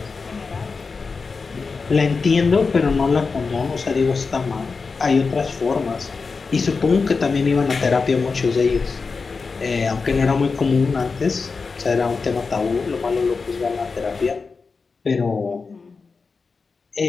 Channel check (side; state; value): right; quieter; 4.6 dB